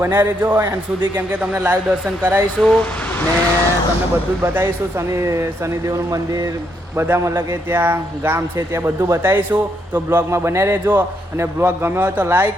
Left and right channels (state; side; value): normal; both; correlation 0.76